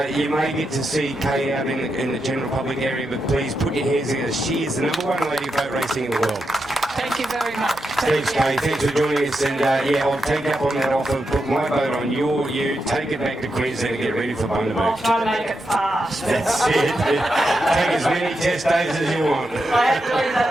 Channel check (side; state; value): both; normal; correlation 0.86